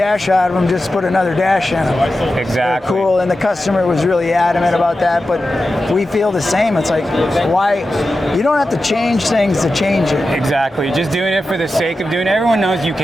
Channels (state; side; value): normal; both; correlation 0.92